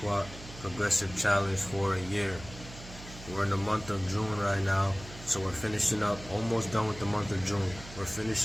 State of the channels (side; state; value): right; noise; hum, 15 dB below the sound